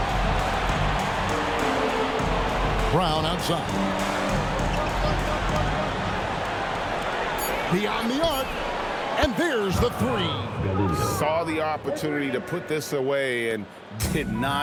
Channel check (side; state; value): both; identical; correlation 1.00